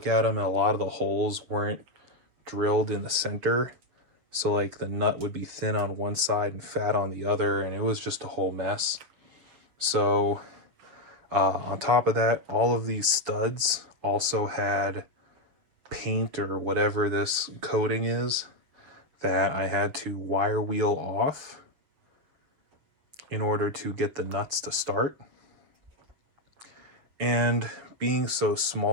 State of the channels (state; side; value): late; left; 7.1 ms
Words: at them and a lot of the holes weren't drilled in the center. So like the nut would be thin on one side and fat on the other, and it was just a whole mess. So on top of that, all of these studs also had paint or whatever this coating is that I had to wire wheel off in order to get the nuts to start. And being so